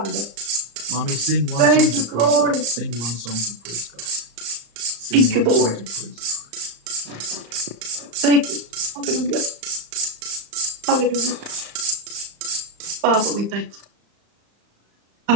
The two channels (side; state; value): left; late; 35 ms